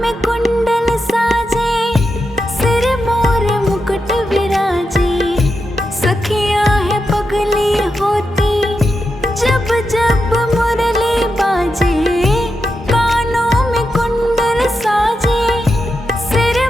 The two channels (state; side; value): normal; both; correlation 0.87